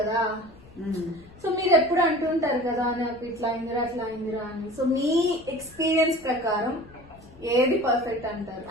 సో మీరు ఎప్పుడు అంటుంటారు కదా, నాకు ఇట్లా అయిందిరా అట్లా అయిందిరా అని. సో మీ ఎక్స్పీరియన్స్ ప్రకారం ఏది పర్ఫెక్ట్ అంటారు?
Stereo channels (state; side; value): noise; left; rumble, 24 dB below the sound